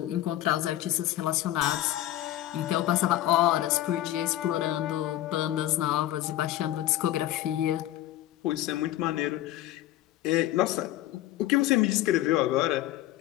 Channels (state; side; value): quieter; right; 14.0 dB